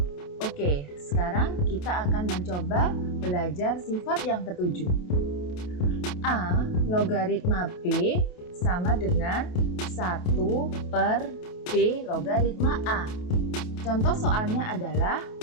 Oke, sekarang kita akan mencoba belajar sifat yang ke-7. A logaritma B sama dengan 1 per B logaritma A. Contoh soalnya adalah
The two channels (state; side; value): late; right; 28 ms